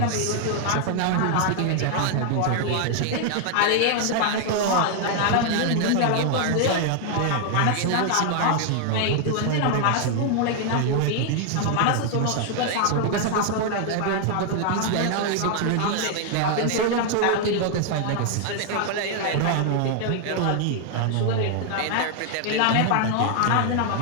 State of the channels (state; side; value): different; both; correlation 0.00